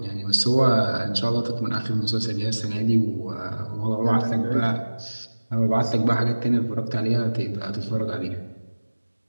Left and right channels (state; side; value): inverted; both; correlation -1.00